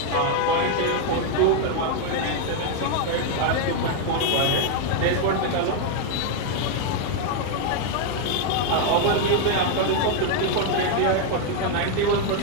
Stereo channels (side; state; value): both; different; correlation 0.00